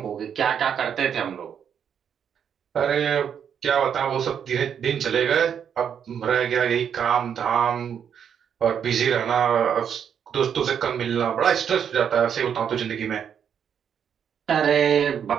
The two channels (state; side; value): quieter; left; 8.1 dB